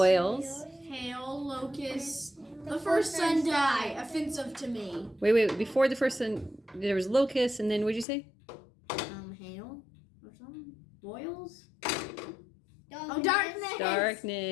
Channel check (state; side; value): drops out; right; at 8.1 s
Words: Hail. Locusts. The first son die. Offensive to me. Wait, before the first one there was locusts, and then what'd you say? Hail. Or something. Boils. Oh, darkness.